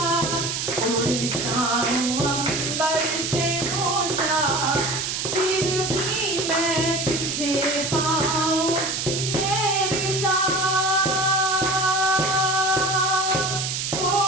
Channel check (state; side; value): noise; right; hiss, 2 dB below the sound